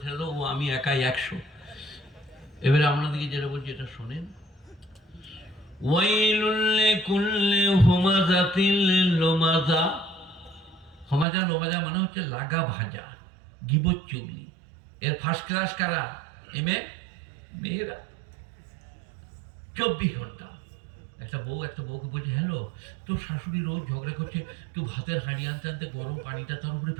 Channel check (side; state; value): left; drops out; at 11.2 s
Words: ছেড়ে দাও, ও আমি একাই 100। এবারে আপনাদেরকে যেটা বলছি এটা শোনেন। ওয়াইলুল লিকুল্লি হুমাযাতিল লুমাযা। হুমাযা লুমাযা মানে হচ্ছে লাগা ভাজা, গিবত চুগলি। এর ফার্স্ট ক্লাস কারা? এমএ মেয়েরা। 24 ঘন্টা। একটা বউকে বলছে, হ্যালো, তোর শাশুড়ি রোজ ঝগড়া করছে, তুই ভাতের হাঁড়ি আনতে আনতে গরম পানিটা তার উপরে